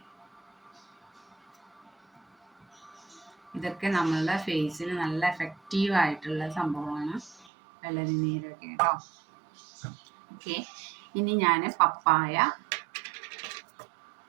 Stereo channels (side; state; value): left; drops out; at 7.5 s